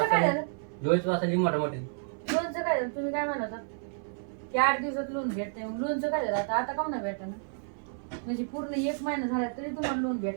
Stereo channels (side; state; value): left; silent; 58 dB below the other